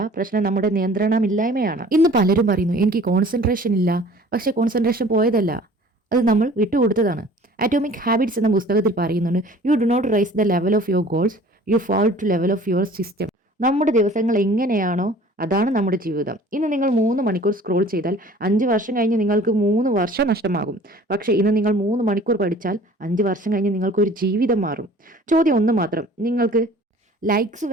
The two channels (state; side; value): normal; both; correlation 0.49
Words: പ്രശ്നം നമ്മുടെ നിയന്ത്രണമില്ലായ്മയാണ്. ഇന്ന് പലരും പറയുന്നു എനിക്ക് കോൺസെൻട്രേഷൻ ഇല്ല. പക്ഷെ കോൺസെൻട്രേഷൻ പോയതല്ല, അത് നമ്മൾ വിട്ടുകൊടുത്തതാണ്. അറ്റോമിക് ഹാബിറ്റ്സ് എന്ന പുസ്തകത്തിൽ പറയുന്നുണ്ട്, you do not rise the level of your goals, you fall to level of your system. നമ്മുടെ ദിവസങ്ങൾ എങ്ങനെയാണോ അതാണ് നമ്മുടെ ജീവിതം. ഇന്ന് നിങ്ങൾ 3 മണിക്കൂർ സ്ക്രോൾ ചെയ്താൽ 5 വർഷം കഴിഞ്ഞ് നിങ്ങൾക്ക് 3 വർഷം നഷ്ടമാകും. പക്ഷേ ഇന്ന് നിങ്ങൾ 3 മണിക്കൂർ പഠിച്ചാൽ 5 വർഷം കഴിഞ്ഞ് നിങ്ങൾക്കൊരു ജീവിതം മാറും. ചോദ്യം ഒന്ന് മാത്രം, നിങ്ങൾക്ക് ലൈക്സ്